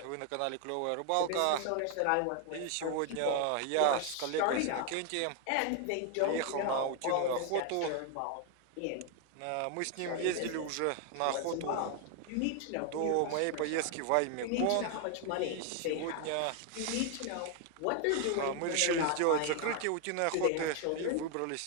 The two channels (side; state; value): both; different; correlation 0.00